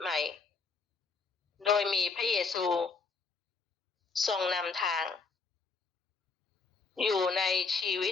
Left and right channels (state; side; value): quieter; right; 4.7 dB